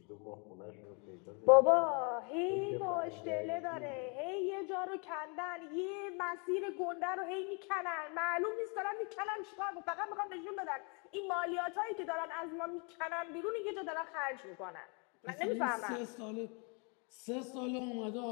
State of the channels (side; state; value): right; quieter; 35.0 dB